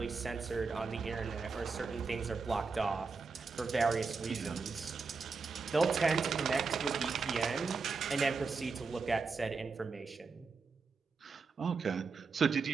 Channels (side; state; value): left; quieter; 4.7 dB